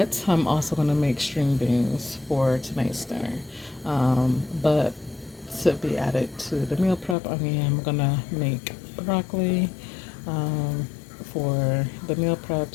I'm also gonna make string beans for tonight's dinner. But to be added to the meal prep, I mean, I'm gonna make broccoli for the meal prep.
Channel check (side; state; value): right; drops out; at 7.2 s